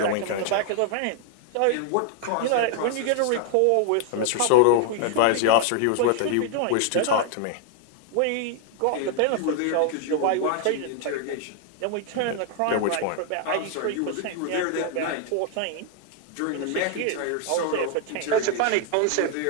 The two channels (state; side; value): different; both; correlation 0.00